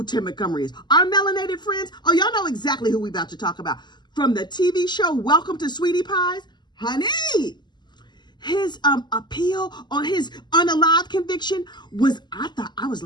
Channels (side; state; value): right; late; 0.21 ms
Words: Tim Montgomery is. Our melanated friends, oh, y'all know exactly who we about to talk about. From the TV show Welcome to Sweetie Pies, honey. His appeal on his unalive conviction was, I was